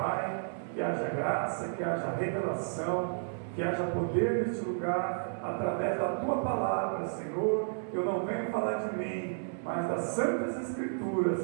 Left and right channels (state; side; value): silent; left; digital silence